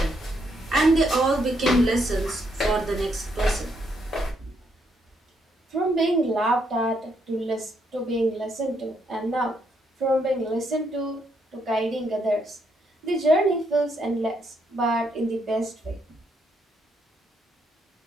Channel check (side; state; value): both; normal; correlation 0.75